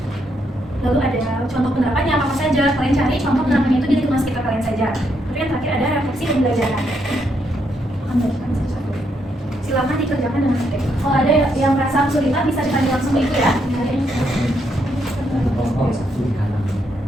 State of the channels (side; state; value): both; normal; correlation 0.77